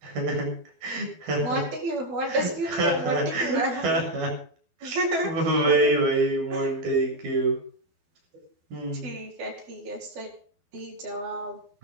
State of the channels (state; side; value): late; left; 12 ms